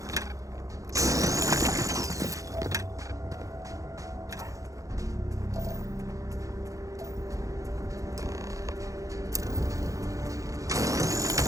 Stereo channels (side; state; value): left; late; 0.16 ms